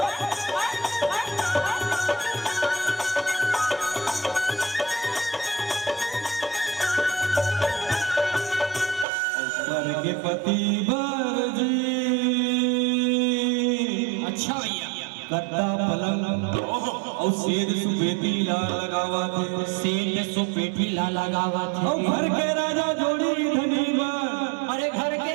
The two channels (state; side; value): drops out; left; at 9.1 s